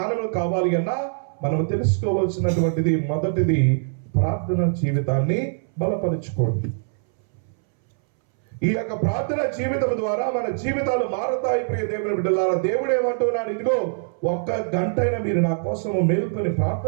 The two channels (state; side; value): silent; left; 63 dB below the other